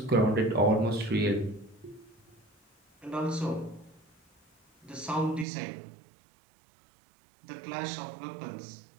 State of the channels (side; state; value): left; drops out; at 5.5 s